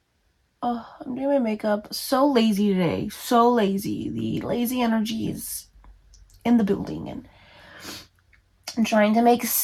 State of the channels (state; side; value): identical; both; correlation 1.00